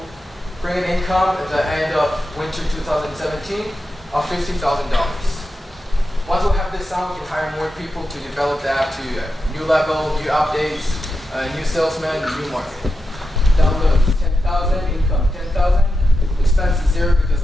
bring an income at the end of winter 2017 of $50,000. Once we have this done, we can hire more people to develop the app to a new level, new updates, new salesmen, new marketing. Download 10,000. 100,000, income 10,000, expenses 0 because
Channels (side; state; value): both; normal; correlation 0.89